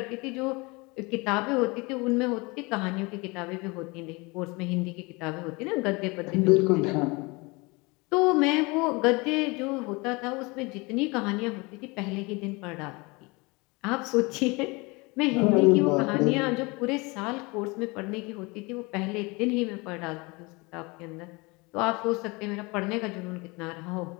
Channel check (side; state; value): right; quieter; 26.2 dB